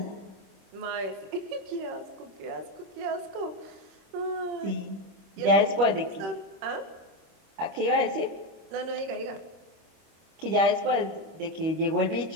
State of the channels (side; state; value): left; late; 25 ms